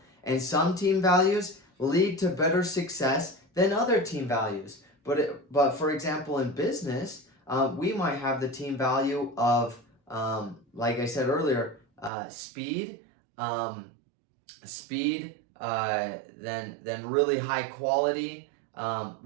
And some team values lead to better success than other team values. But for example, in business, we might have the team value of, like I said earlier, speed, then really high quality.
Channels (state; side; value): drops out; left; at 12.1 s